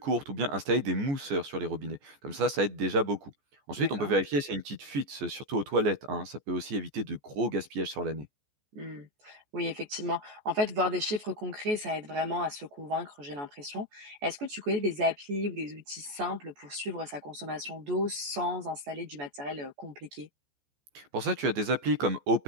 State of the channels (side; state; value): left; late; 14 ms